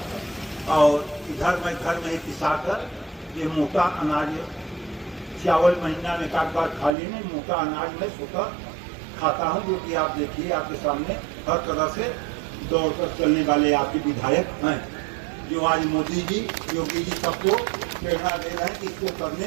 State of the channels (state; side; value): drops out; left; at 6.9 s